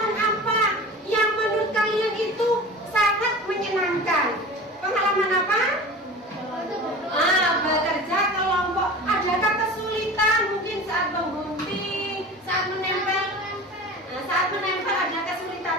apa yang menurut kalian itu sangat menyenangkan? Pengalaman apa? Bekerja kelompok. Adakah kesulitan mungkin saat menggunting, saat menempel? Nah, saat menempel ada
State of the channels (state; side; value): normal; both; correlation 0.36